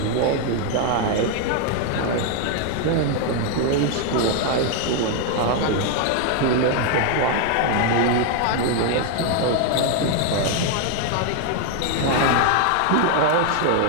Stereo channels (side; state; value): both; different; correlation 0.01